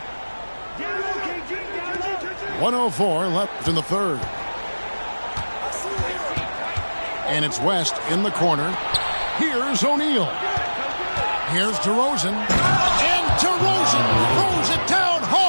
.104 left in the third. And it's West in the corner. Here's O'Neal. Here's DeRozan. And DeRozan throws it down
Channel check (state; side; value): inverted; both; correlation -1.00